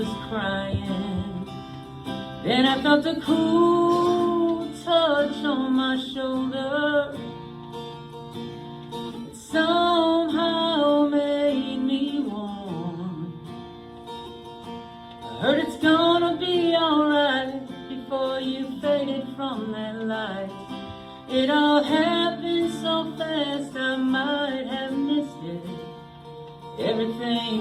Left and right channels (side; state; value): both; identical; correlation 1.00